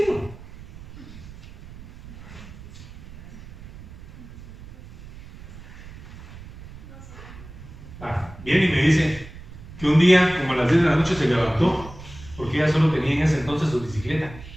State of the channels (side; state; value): right; noise; rumble, 16 dB below the sound